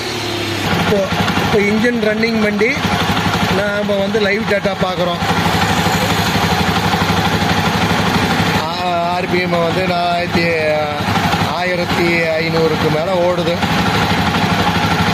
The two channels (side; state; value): both; identical; correlation 1.00